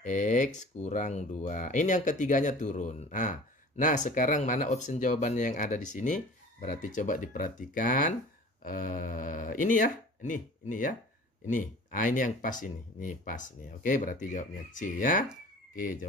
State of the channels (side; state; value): both; normal; correlation 0.43